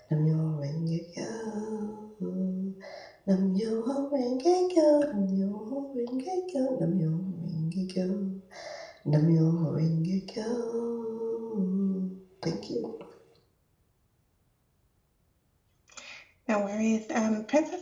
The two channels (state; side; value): identical; both; correlation 1.00